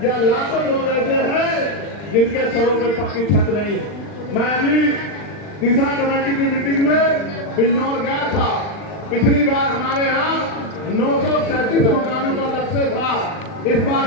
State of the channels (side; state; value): right; late; 40 ms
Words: या लाखों लोग ऐसे हैं जिनके सरों पे पक्की छत नहीं है। मैं अभी दिशा कमेटी की मीटिंग में बिजनौर गया था। पिछली बार हमारे यहाँ 937 मकानों का लक्ष्य था, इस बार